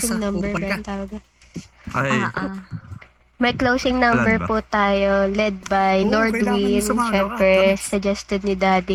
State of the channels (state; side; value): identical; both; correlation 1.00